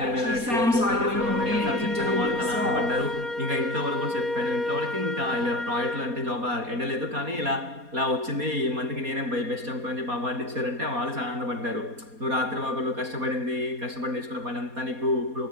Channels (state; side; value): late; left; 4.2 ms